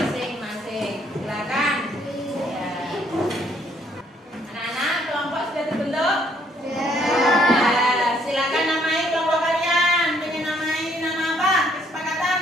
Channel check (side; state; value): both; normal; correlation 0.66